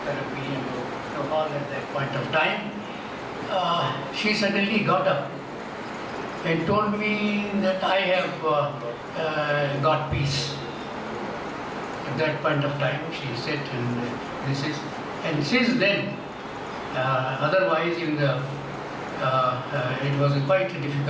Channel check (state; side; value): identical; both; correlation 1.00